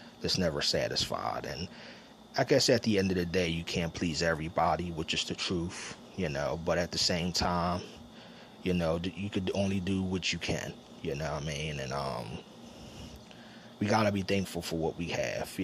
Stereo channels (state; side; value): identical; both; correlation 1.00